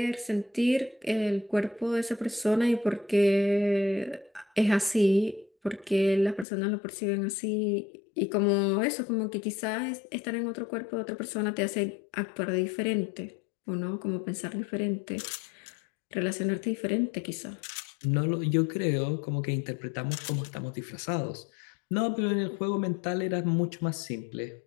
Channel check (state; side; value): drops out; right; at 6.5 s